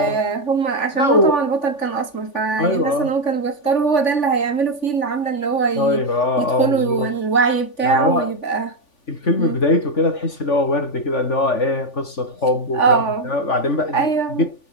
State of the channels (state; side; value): late; right; 3.5 ms